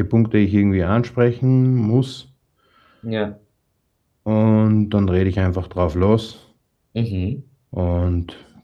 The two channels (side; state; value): both; identical; correlation 1.00